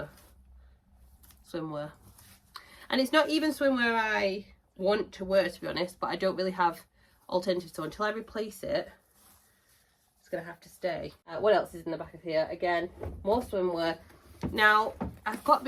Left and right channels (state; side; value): identical; both; correlation 1.00